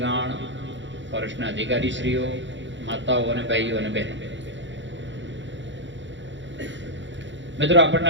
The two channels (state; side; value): late; left; 0.54 ms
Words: ફોરેસ્ટના અધિકારીશ્રીઓ, માતાઓ અને ભાઈઓ અને બહેનો. મિત્રો, આપણને